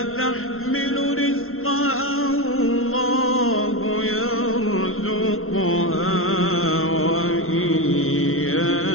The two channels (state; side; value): late; right; 0.62 ms